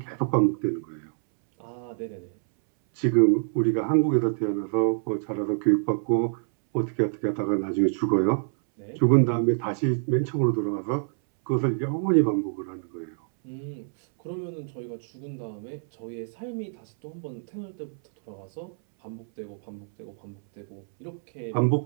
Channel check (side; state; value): left; silent; 60 dB below the other